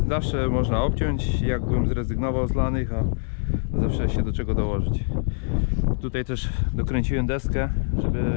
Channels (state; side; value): silent; right; digital silence